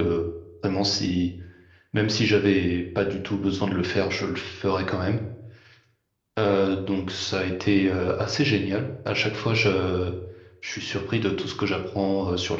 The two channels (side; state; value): both; identical; correlation 1.00